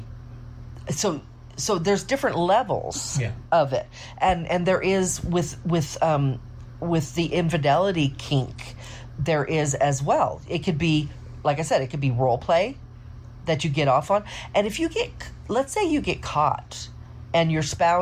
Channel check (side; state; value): both; identical; correlation 1.00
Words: So there's different levels of it, and there is with the infidelity kink, there is as well. It could be, like I said, it could be role play that you get off on. And if let's say you get caught and your